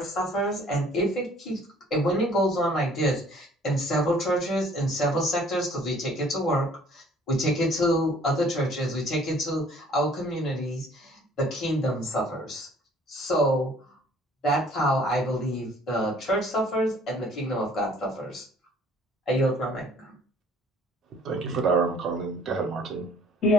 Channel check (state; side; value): normal; both; correlation 0.55